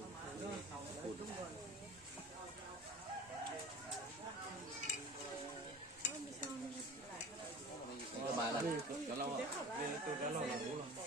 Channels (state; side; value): normal; both; correlation 0.39